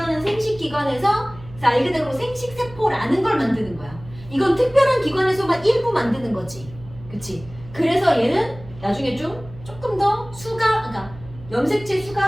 생식기관에서 말 그대로 생식세포라는 걸 만드는 거야. 이건 특별한 기관에서만 일부 만드는 거지. 그치? 그래서 얘는 나중에 조금 더 수가, 그러니까 염색체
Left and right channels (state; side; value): noise; right; hum, 18 dB below the sound